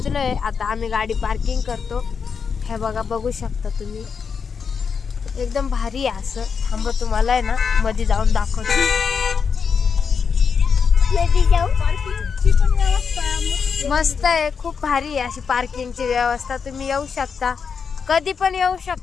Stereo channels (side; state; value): right; quieter; 6.0 dB